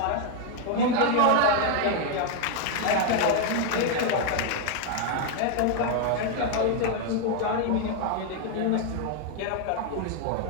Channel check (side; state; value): both; different; correlation 0.00